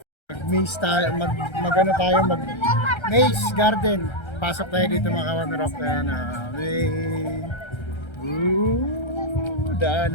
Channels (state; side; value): late; right; 1.3 ms